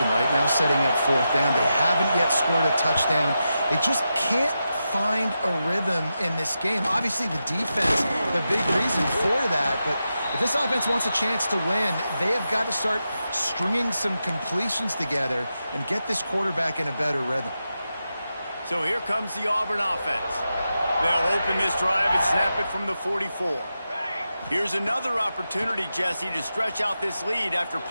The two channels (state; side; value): inverted; both; correlation -0.89